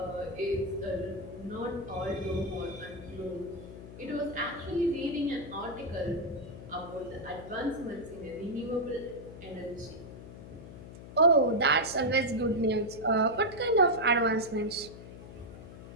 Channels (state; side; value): noise; left; hum, 14 dB below the sound